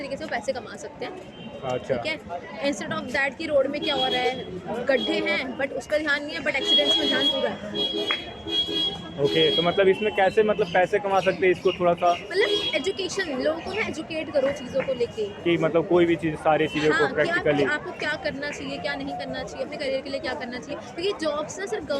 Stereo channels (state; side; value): identical; both; correlation 1.00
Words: से वो पैसे कमा सकते हैं, अच्छा, ठीक है। इंस्टेड ऑफ दैट कि रोड में क्या हो रहा है, गड्ढे हैं बट उस पर ध्यान नहीं है, बट एक्सीडेंट्स में ध्यान पूरा है। ओके, तो मतलब इसमें कैसे मतलब पैसे कमा सकते हैं, इसको थोड़ा सा मतलब एजुकेशन, लोगों को ना एजुकेट करो चीज़ों को लेके, कि मतलब कोई भी चीज़ सारी चीज़ों हाँ, को कि प्रैक्टिकली आपको क्या करना चाहिए, क्या नहीं करना चाहिए, अपने करियर के लिए क्या करना चाहिए। क्योंकि जॉब्स ना सिर्फ